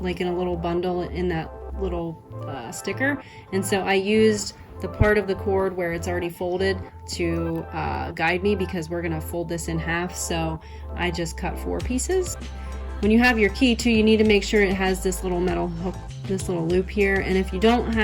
like in a little bundle in that little sticker, and so I used the part of the cord where it's already folded to guide me, because we're gonna fold this in half, so I just cut 4 pieces. When you have your key too, you need to make sure it has this little metal hook, this little loop here, and if you don't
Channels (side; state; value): both; identical; correlation 1.00